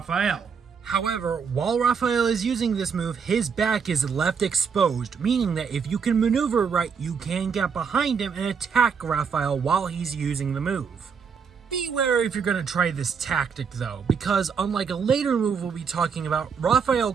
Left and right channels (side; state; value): left; quieter; 6.2 dB